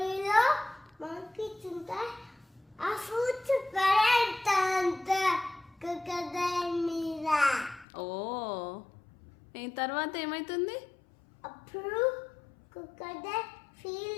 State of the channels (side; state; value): right; drops out; at 7.9 s